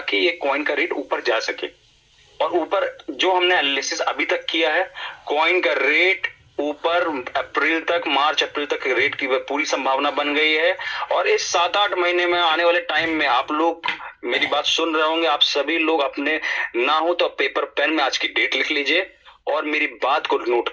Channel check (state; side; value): identical; both; correlation 1.00